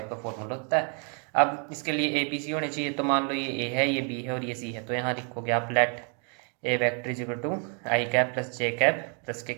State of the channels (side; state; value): left; quieter; 39.5 dB